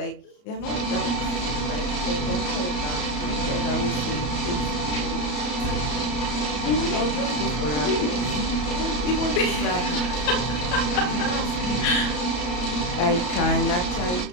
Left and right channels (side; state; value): right; late; 33 ms